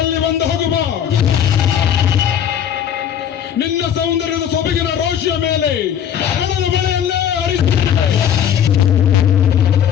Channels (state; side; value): quieter; right; 9.1 dB